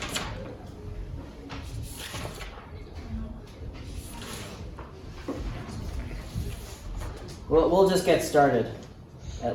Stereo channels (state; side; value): identical; both; correlation 1.00